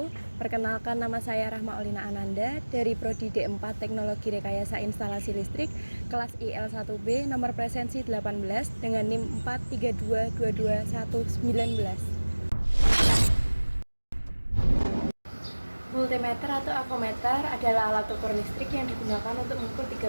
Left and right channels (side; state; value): both; inverted; correlation -1.00